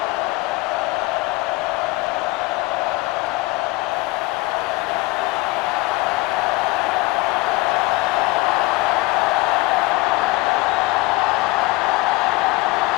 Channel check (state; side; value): quieter; right; 21.7 dB